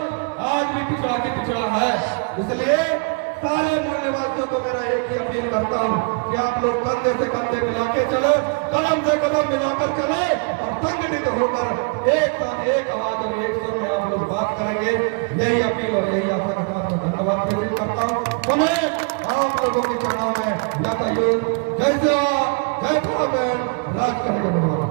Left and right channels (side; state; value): left; quieter; 34.4 dB